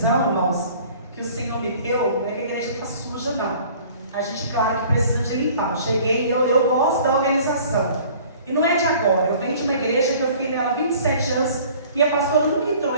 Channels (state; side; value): inverted; both; correlation -0.50